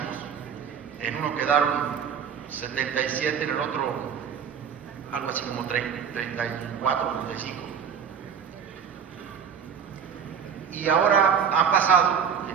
en uno quedaron 77, en el otro algo así como 34, 35. Y ahora han pasado,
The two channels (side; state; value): left; quieter; 7.3 dB